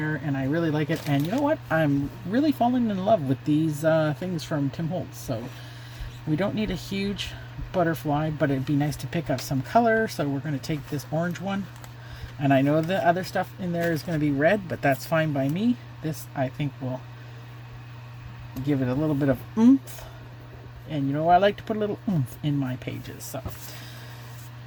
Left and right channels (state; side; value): identical; both; correlation 1.00